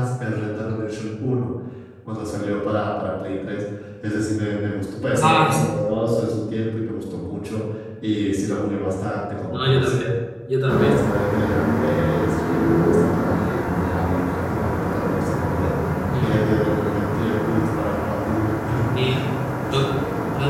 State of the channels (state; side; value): identical; both; correlation 1.00